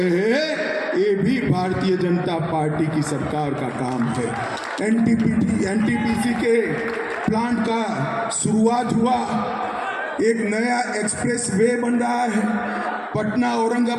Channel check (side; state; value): both; identical; correlation 1.00